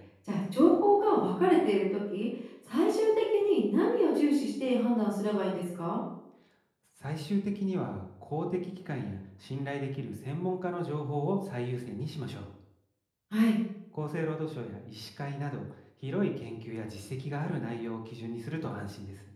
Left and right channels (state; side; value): identical; both; correlation 1.00